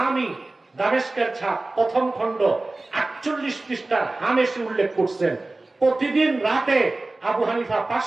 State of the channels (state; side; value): quieter; left; 3.0 dB